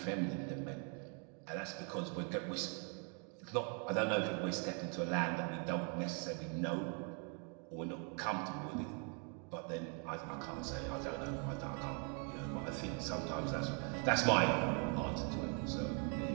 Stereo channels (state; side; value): quieter; left; 38.9 dB